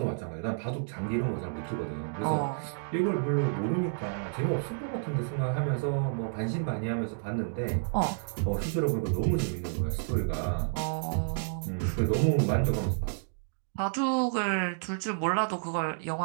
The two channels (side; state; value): left; silent; digital silence